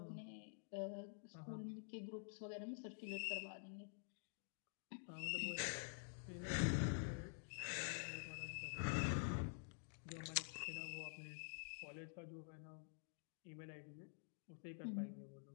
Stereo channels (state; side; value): silent; right; digital silence